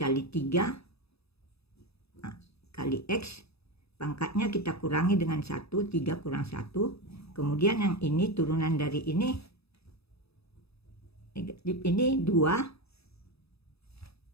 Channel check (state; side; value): late; right; 0.78 ms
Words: 3 kali x, pangkatnya kita kurangi dengan 1, 3 kurang 1. Kemudian yang ini turunan dari ini negatif, ini